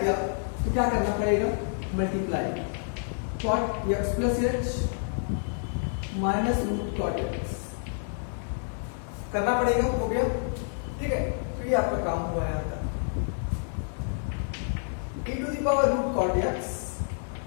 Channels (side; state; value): right; silent; 59 dB below the other